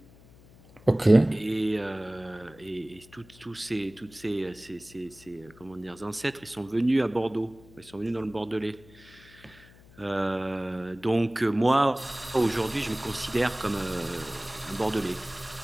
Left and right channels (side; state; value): left; noise; hum, 24 dB below the sound